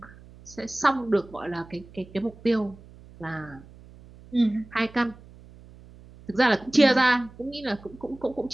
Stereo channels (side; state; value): right; noise; hum, 21 dB below the sound